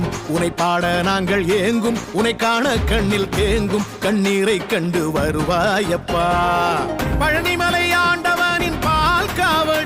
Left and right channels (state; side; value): identical; both; correlation 1.00